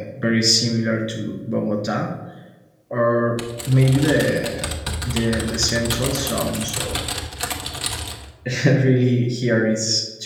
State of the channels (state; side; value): identical; both; correlation 1.00